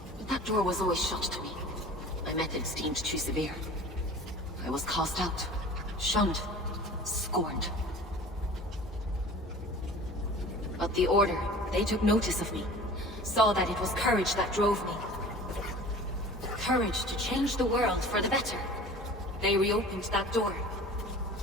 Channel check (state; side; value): normal; both; correlation 0.42